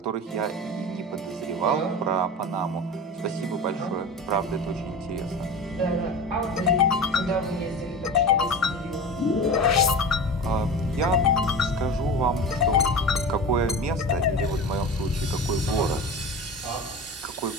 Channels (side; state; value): both; normal; correlation 0.31